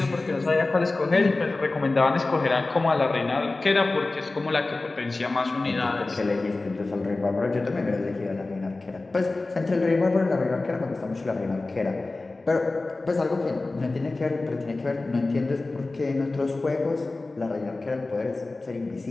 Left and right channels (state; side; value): quieter; right; 3.3 dB